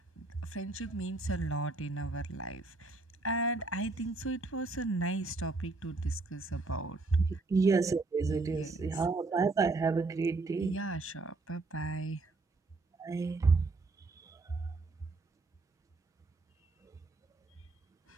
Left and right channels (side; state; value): left; quieter; 3.5 dB